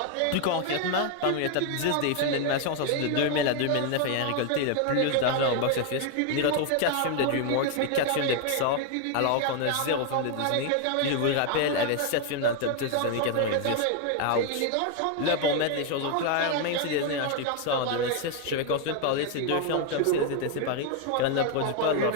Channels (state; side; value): different; both; correlation 0.00